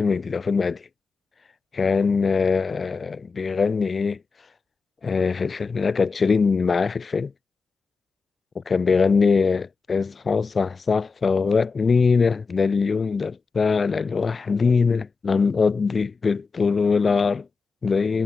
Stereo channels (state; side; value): quieter; right; 4.7 dB